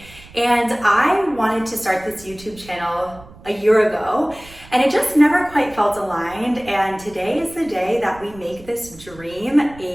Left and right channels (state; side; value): noise; right; rumble, 21 dB below the sound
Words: And I wanted to start this YouTube channel a year ago, and it just never quite felt aligned. And today is the day that we make this dream